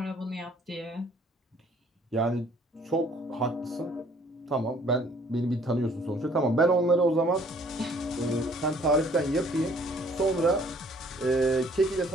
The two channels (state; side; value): normal; both; correlation 0.59